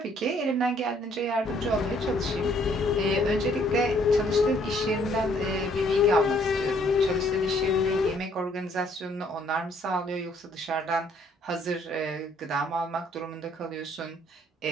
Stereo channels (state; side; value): normal; both; correlation 0.64